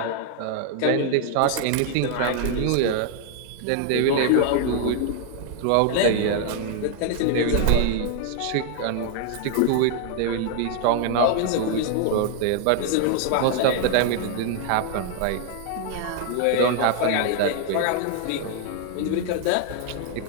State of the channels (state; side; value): different; both; correlation 0.00